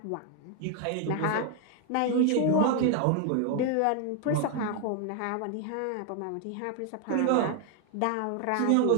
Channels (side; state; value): both; different; correlation 0.00